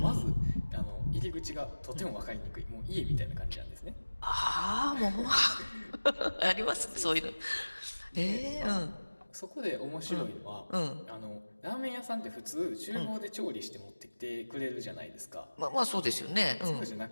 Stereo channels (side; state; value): both; inverted; correlation -1.00